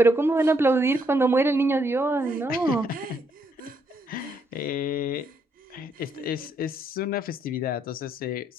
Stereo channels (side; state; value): both; normal; correlation 0.73